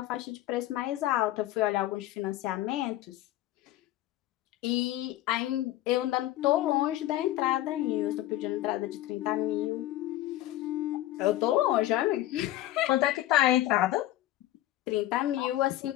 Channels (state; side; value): quieter; right; 14.7 dB